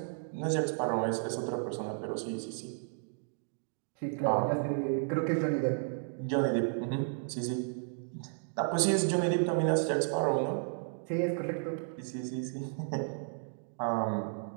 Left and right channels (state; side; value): silent; left; digital silence